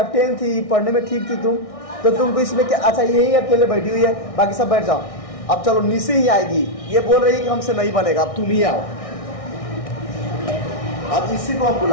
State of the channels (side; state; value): right; late; 1.6 ms